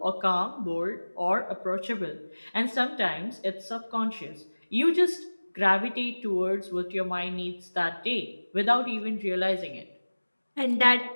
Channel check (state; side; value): inverted; both; correlation -1.00